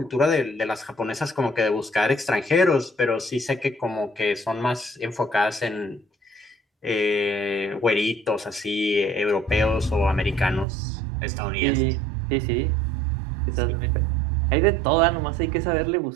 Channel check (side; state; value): left; drops out; at 10.7 s